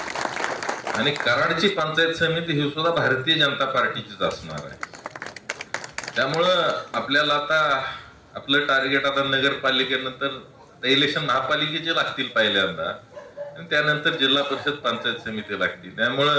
आणि कराडची पंचायत समिती ही सुद्धा भारतीय जनता पार्टीचीच असणार आहे. त्यामुळं आपल्याला आता आपलं टार्गेट आता नगरपालिकेनंतर इलेक्शन महापालिकेचे लागतील पहिल्यांदा, आणि त्यानंतर जिल्हा परिषद पंचायत समिती लागतील.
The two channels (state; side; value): identical; both; correlation 1.00